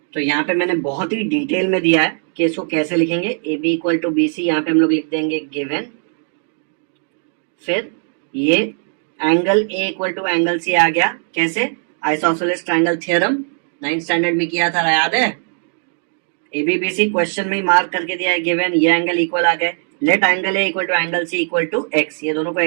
तो यहाँ पे मैंने बहुत ही डिटेल में दिया है कि इसको कैसे लिखेंगे। A B equal to B C, यहाँ पे हम लोग लिख देंगे गिवन। फिर ये angle A equal to angle C आ गया, कैसे, isosceles triangle theorem 9th standard में किया था, याद है। A B B C question में मार्क करके दिया है गिवन, ये एंगल इक्वल आ गए। Let angle A equal to angle C equal to X, ये दोनों को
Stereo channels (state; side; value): silent; left; 63 dB below the other